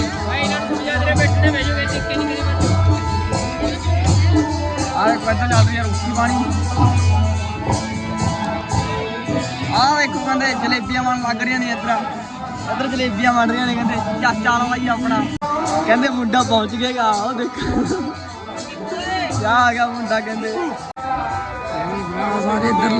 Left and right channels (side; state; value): both; identical; correlation 1.00